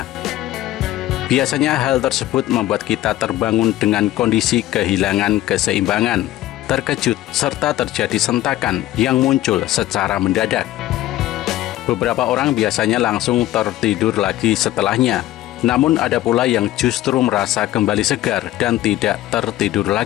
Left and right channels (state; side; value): quieter; right; 14.9 dB